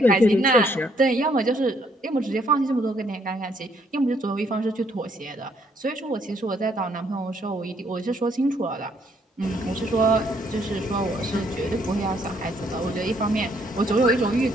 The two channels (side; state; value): both; normal; correlation 0.68